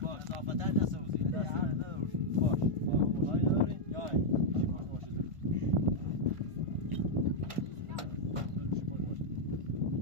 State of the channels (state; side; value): late; left; 1.5 ms